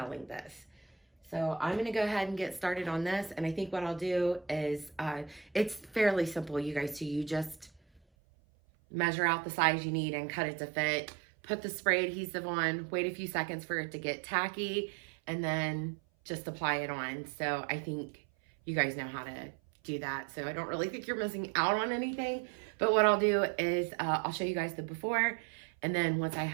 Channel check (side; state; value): left; drops out; at 8.0 s